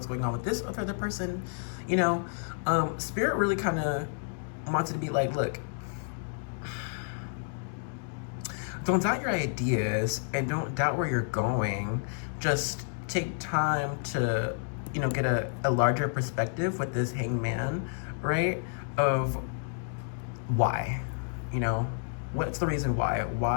going on with this other person? You know, Spirit really kind of wanted to be like, look, don't doubt your ideas and don't doubt where you're going. Just take time to, get a larger perspective with this hangman, right? Of why, what's the reason why?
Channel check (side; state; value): right; silent; digital silence